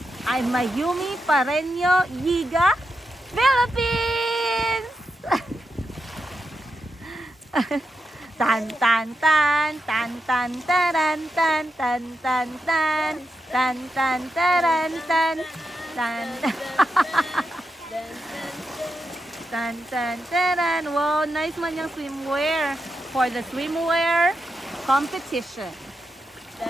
I'm Mayumi Pareño Yiga, Philippines! Tan tan tan tan tan taran tan tan tan tan tan tan taran tan tan tan tan taran. Wow, nice man yung swimwear for the swimwear competition.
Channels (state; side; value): normal; both; correlation 0.86